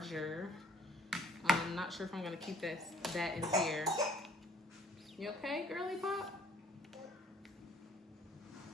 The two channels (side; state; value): both; normal; correlation 0.56